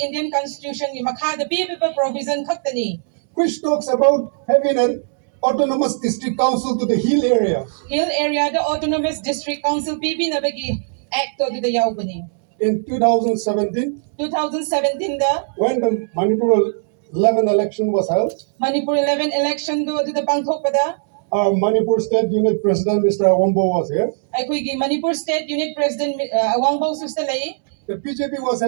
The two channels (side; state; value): left; silent; digital silence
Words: Indian Constitution gi makha bibi provision khaktani. which talks about having an autonomous district council to the hill area. Hill area the autonomous district council bibi na bagi act to the yaubani. In 2017, 2017 da when the Manipur 11 election was held, Manipur 11 election do the pangthok pada. our Manipur State Unit President, Mr. Awambo, was here. Aikoy Manipur State Unit President Awangbo sustalay. The BJP was